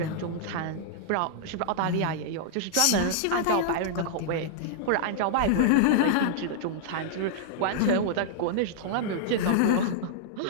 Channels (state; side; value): different; both; correlation -0.01